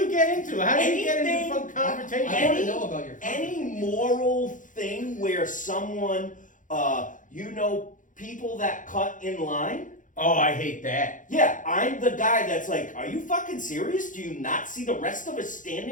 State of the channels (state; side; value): late; right; 0.38 ms